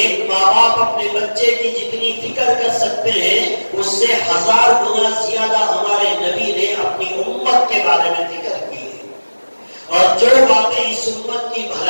ماں باپ اپنے بچے کی جتنی فکر کر سکتے ہیں اس سے 1000 گنا زیادہ ہمارے نبی نے اپنی امت کے بارے میں فکر کی ہے، اور جو باتیں اس امت کی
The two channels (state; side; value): inverted; both; correlation -1.00